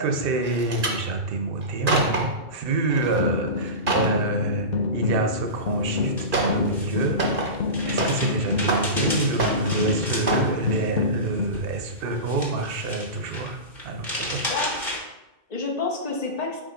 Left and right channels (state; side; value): late; left; 2.4 ms